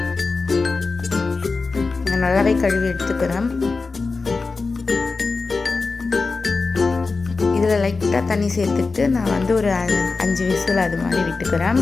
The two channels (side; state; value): right; quieter; 4.1 dB